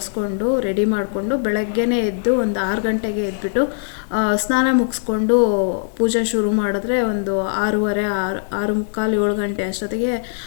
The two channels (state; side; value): silent; right; digital silence